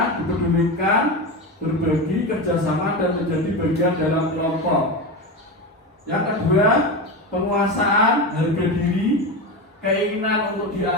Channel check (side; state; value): both; normal; correlation 0.20